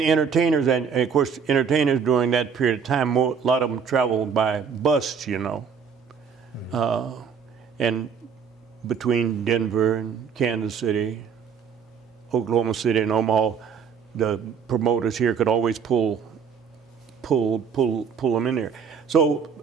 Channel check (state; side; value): quieter; left; 6.5 dB